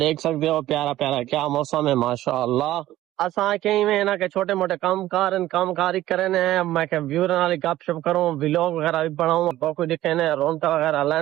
دیکھ سکتے ہو پیارا پیارا کیا موسم ہے ماشاءاللہ اساں کہیں میں نا کہ چھوٹے موٹے کام کاری کرنے ہیں میں کہ ویور والی گپ شپ کروں ویلوگ وغیرہ بھی بناؤں باقی دکھنے رونق وغیرہ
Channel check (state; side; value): quieter; left; 14.7 dB